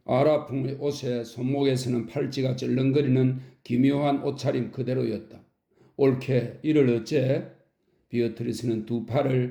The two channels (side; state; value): both; identical; correlation 1.00